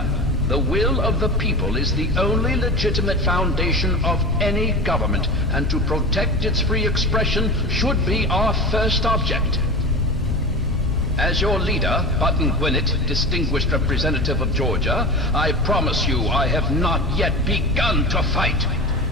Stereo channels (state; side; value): normal; both; correlation 0.28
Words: the will of the people is the only legitimate foundation of any government, and to protect its free expression should be our first object. As your leader, Button Gwinnett, distinguished representative of Georgia, I promise you I have not yet begun to fight.